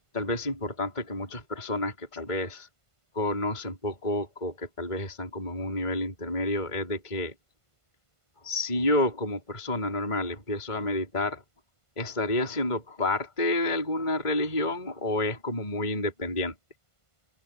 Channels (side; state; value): right; late; 1.5 ms